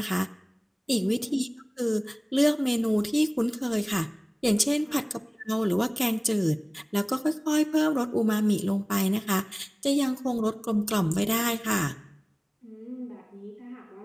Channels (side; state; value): both; identical; correlation 1.00